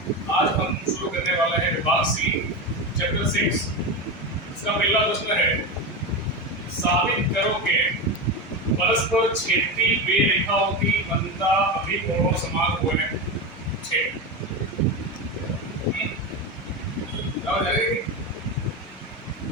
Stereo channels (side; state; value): both; normal; correlation 0.18